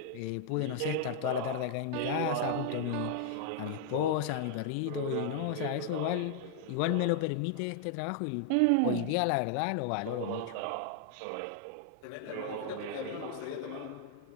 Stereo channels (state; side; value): different; both; correlation 0.00